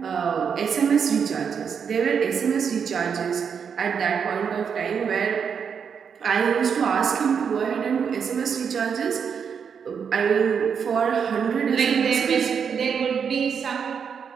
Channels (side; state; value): left; quieter; 6.8 dB